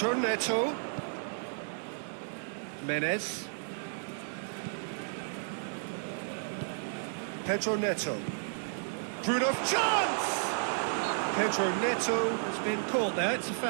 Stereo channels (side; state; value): left; silent; 56 dB below the other